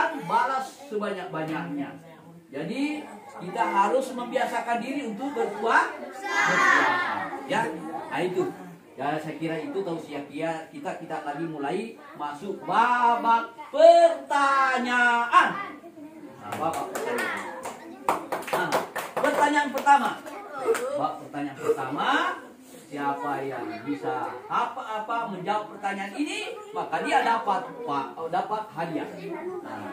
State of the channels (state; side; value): identical; both; correlation 1.00